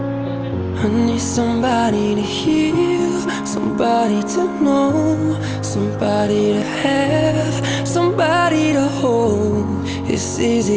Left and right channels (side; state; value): right; noise; hum, 28 dB below the sound